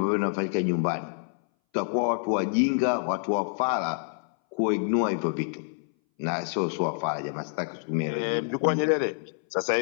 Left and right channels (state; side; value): silent; right; 59 dB below the other